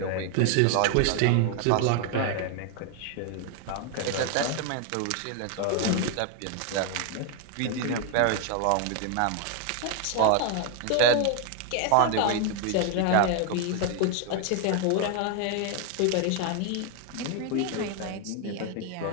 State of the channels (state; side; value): different; both; correlation 0.01